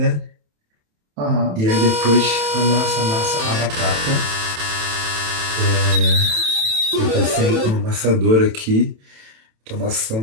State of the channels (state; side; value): late; left; 27 ms